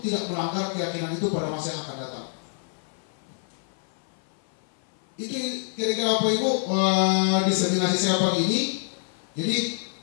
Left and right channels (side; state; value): right; silent; 56 dB below the other